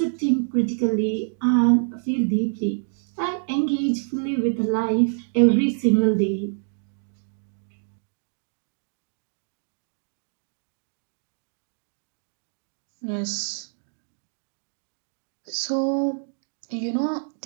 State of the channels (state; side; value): silent; left; digital silence